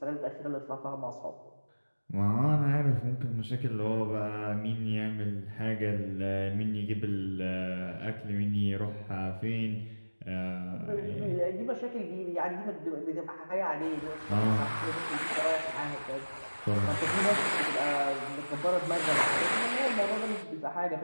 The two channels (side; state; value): both; inverted; correlation -1.00